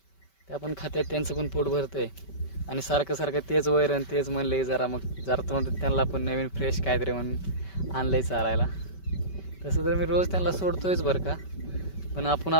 त्या पण खात्यात, त्यांचं पण पोट भरतंय. आणि सारखं सारखं तेच वैरण तेच म्हणले, जरा मग जरा तोंड त्यांना पण नवीन फ्रेश काहीतरी म्हणून आणलंय चारायला. तसं तर मी रोज त्यांना सोडतोयच बरं का, पण आपण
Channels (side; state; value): right; late; 5.2 ms